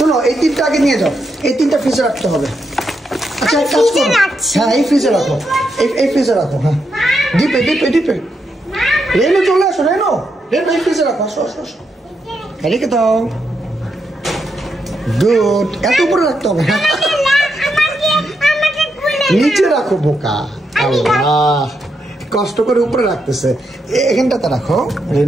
এই তিনটা আগে নিয়ে যাও, এই তিনটা ফ্রিজে রাখতে হবে। আচ্ছা, এক কাজ করো, হ্যাঁ এই ফ্রিজে রাখো, এই ফ্রিজে রাখো। হ্যাঁ, ডিপে ডিপে ডিপে। রেনু চলে আসো, রেনু রেনু এই ফ্রিজে রাখো, আসো আসো আসো, রেখে দাও। গুড, এত উপরে রাখতে হবে। নিচে রাখো বোকা। আল্লাহ, কষ্ট করে উপরে রাখতেছে। এখানটাতে রাখো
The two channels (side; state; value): both; normal; correlation 0.82